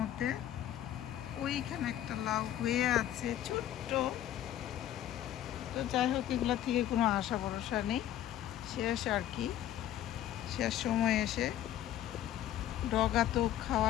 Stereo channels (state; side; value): quieter; right; 12.0 dB